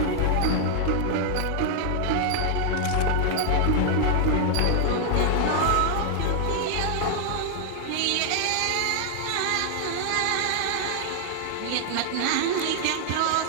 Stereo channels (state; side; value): different; both; correlation 0.00